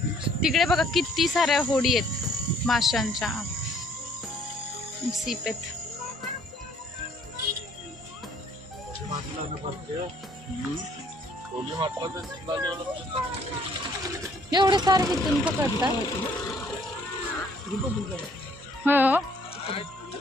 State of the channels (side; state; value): both; normal; correlation 0.61